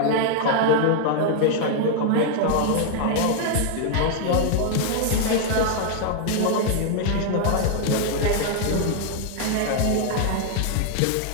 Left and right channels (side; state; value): both; different; correlation 0.00